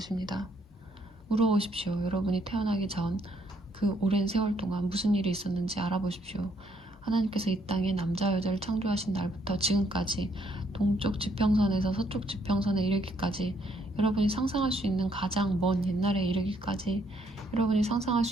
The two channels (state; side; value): normal; both; correlation 0.70